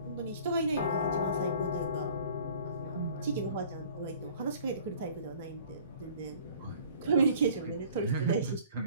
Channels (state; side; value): inverted; both; correlation -0.51